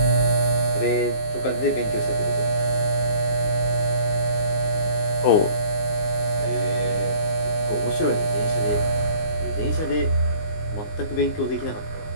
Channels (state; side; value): late; right; 19 ms